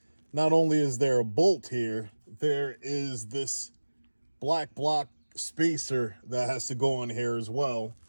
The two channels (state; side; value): inverted; both; correlation -1.00